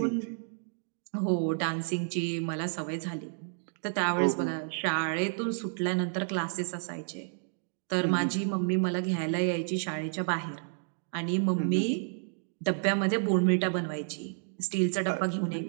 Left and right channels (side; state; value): left; silent; digital silence